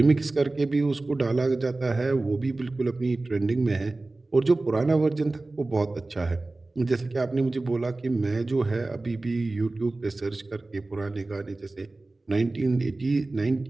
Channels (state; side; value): quieter; left; 3.1 dB